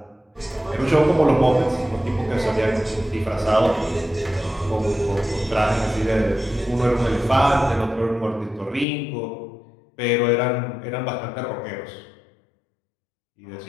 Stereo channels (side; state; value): right; drops out; at 8.8 s